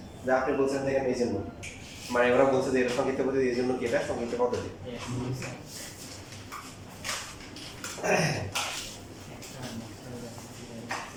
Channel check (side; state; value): both; identical; correlation 1.00